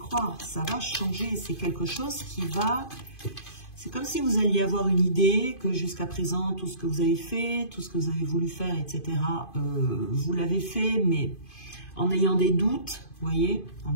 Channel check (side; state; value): right; late; 2.5 ms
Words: Ça va changer. C'est quelque chose qui va... C'est comme si vous alliez avoir une idée que jusqu'à présent, tout ce que vous avez fait, tout ce que vous avez voulu faire, etc., vous l'avez fait, mais en ayant des doutes, vous voyez, en